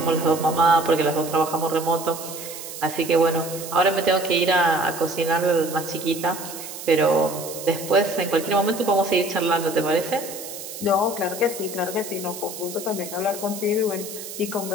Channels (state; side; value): noise; right; hiss, 11 dB below the sound